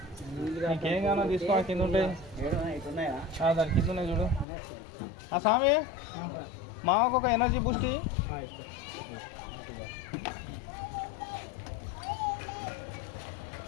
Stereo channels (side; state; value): right; drops out; at 4.5 s